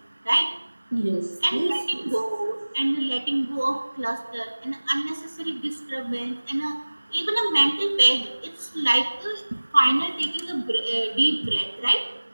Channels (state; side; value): inverted; both; correlation -1.00